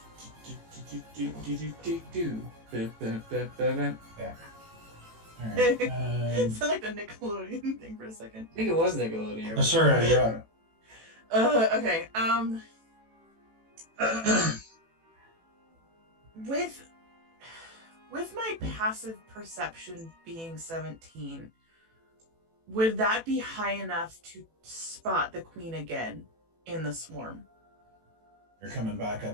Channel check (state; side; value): late; left; 18 ms